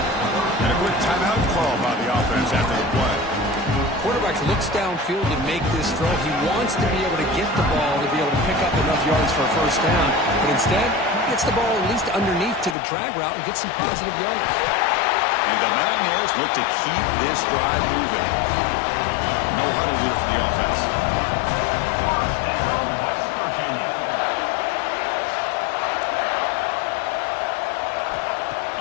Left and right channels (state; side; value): drops out; right; at 12.8 s